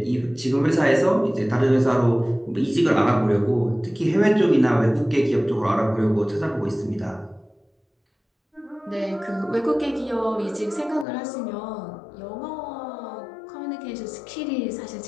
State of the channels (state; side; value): drops out; right; at 11.1 s